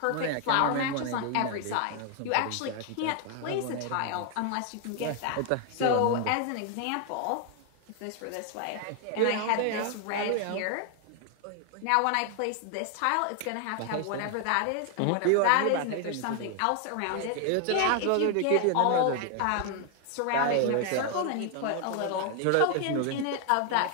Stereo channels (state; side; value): different; both; correlation 0.00